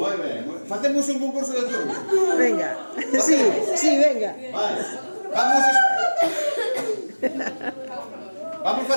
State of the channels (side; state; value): both; inverted; correlation -1.00